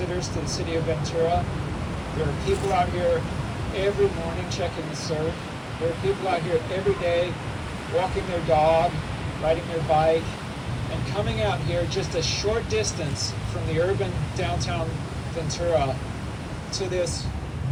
to the city of Ventura. There are people out here every morning checking the surf. There are people out here every day walking their dog, riding their bike, and coming out here just a short distance from the urban downtown Ventura to this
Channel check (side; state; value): both; identical; correlation 1.00